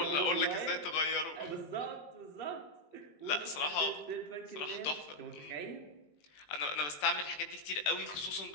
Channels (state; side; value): late; right; 20 ms